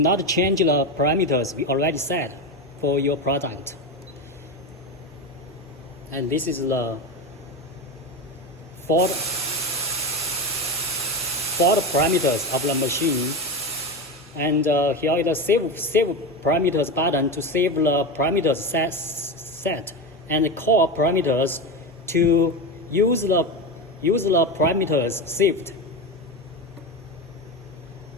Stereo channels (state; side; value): normal; both; correlation 0.19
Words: change the parameters we already set for your product. And this is the fault parameters of the machine. And here is the save parameters button to save the parameters set and the core parameters to use the parameters saved.